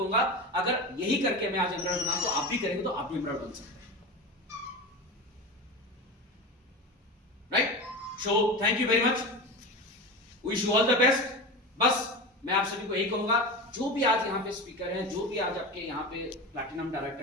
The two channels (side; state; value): both; normal; correlation 0.26